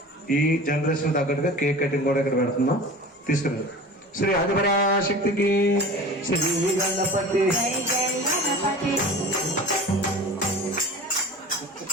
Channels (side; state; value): both; normal; correlation 0.38